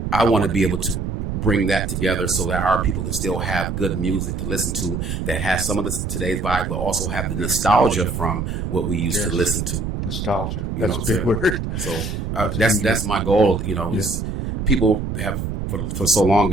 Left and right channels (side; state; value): right; noise; rumble, 4 dB below the sound